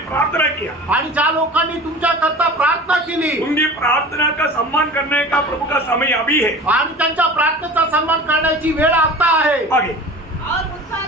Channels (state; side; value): normal; both; correlation 0.38